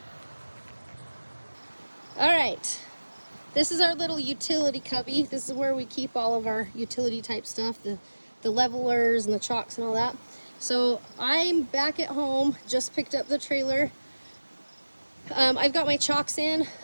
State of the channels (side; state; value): both; inverted; correlation -1.00